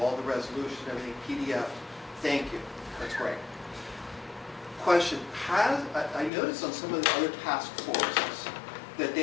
the resolution, everything PDF. Thank you. That's great. Question, I noticed on some of the other task forces that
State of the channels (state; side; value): drops out; right; at 6.3 s